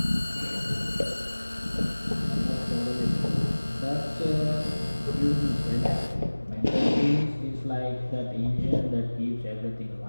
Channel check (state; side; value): inverted; both; correlation -1.00